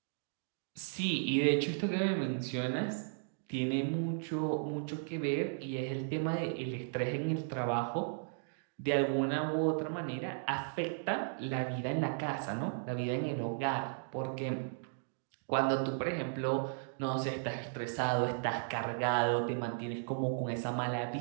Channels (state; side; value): silent; left; digital silence